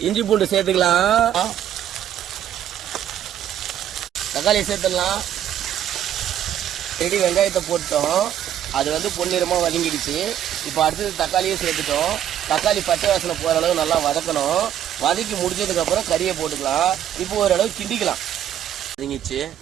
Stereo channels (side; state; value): left; quieter; 10.7 dB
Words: இஞ்சி பூண்டு சேர்த்துக்கலாம். தக்காளி சேர்த்துடலாம். ரெடி வெங்காயத்தை போட்டோம். அது வந்து பொன்னிறமாக வதங்கிடுச்சு. இப்போ அடுத்தது தக்காளியே சேர்த்துட்டோம். தக்காளி பச்சை வாசனை போகிற அளவு நல்லா வதக்கணும். வதக்கி முடிச்சதுக்கப்புறம் கறியை போட்டுக்கலாம். இப்போ ஓரளவு கிண்டிக்கலாம். வதங்கிச்சு,